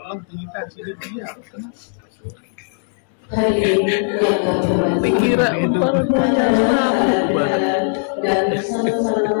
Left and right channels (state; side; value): silent; right; digital silence